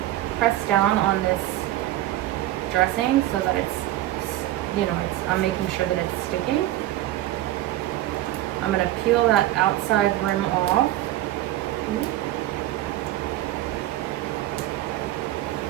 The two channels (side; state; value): left; quieter; 14.8 dB